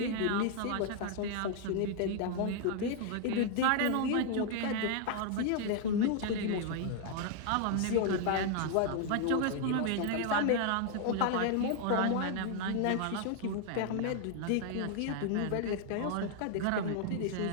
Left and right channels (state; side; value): different; both; correlation 0.00